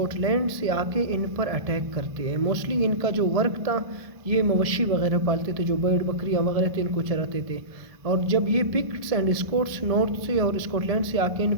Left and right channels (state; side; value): late; left; 1.7 ms